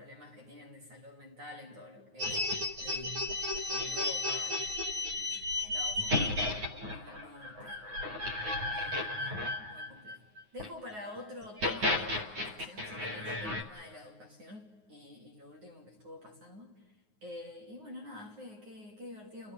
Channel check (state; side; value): late; left; 9.5 ms